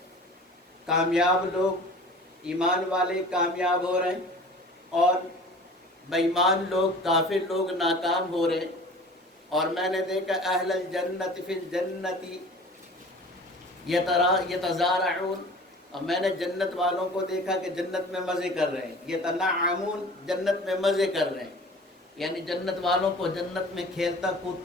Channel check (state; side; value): normal; both; correlation 0.43